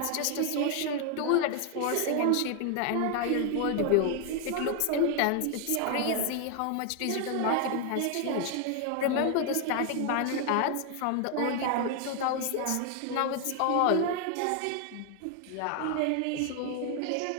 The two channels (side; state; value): both; different; correlation 0.01